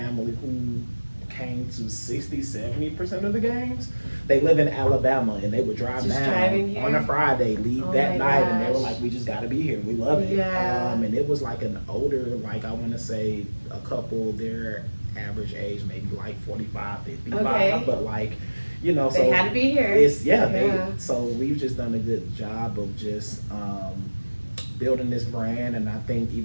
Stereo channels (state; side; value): inverted; both; correlation -1.00